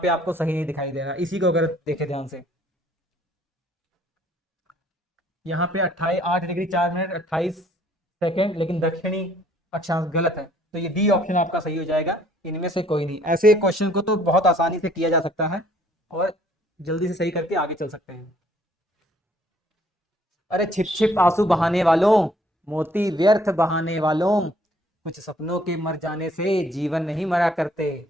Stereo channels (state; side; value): normal; both; correlation 0.61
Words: आपको सही नहीं दिखाई दे रहा। इसी को अगर देखें ध्यान से, यहाँ पे 8 डिग्री 4 मिनट 28 सेकेंड, लेकिन दक्षिणी अक्षांश गलत है, तो ये डी ऑप्शन आपका सही हो जाएगा। इनमें से कोई नहीं। ऐसे क्वेश्चन को तो बहुत आसानी से किया जा सकता है और जल्दी से सही करके आगे चल सकते हैं। अरे छिप छिप आंसू बहाने वालों, मोती व्यर्थ बहाने वालों, कुछ सपनों के मर जाने से जीवन नहीं मरा करते।